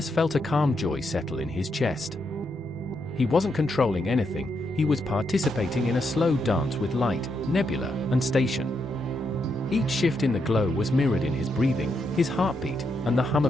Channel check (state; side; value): normal; both; correlation 0.80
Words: felt a calm joy settle in his chest. He wasn't controlling anything, he was participating in a slow dance with light, nebula, and station. Each shift in the glow was mirrored in his breathing, his heartbeat, and the hum